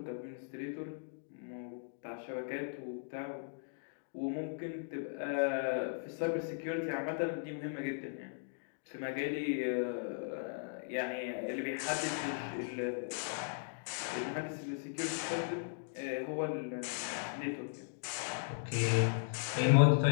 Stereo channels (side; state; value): right; silent; digital silence